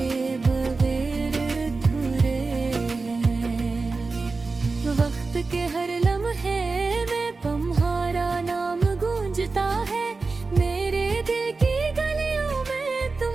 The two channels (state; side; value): quieter; left; 3.9 dB